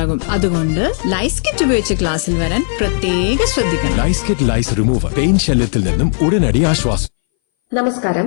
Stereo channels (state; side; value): silent; right; 62 dB below the other